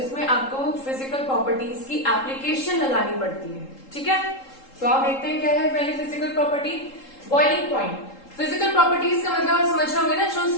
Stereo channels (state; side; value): late; right; 3.7 ms